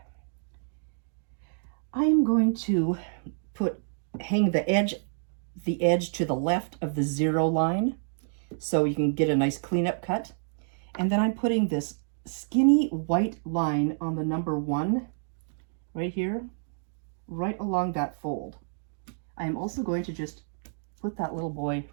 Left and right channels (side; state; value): left; silent; digital silence